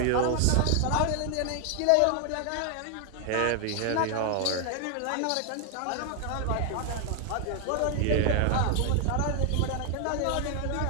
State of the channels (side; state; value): both; different; correlation 0.00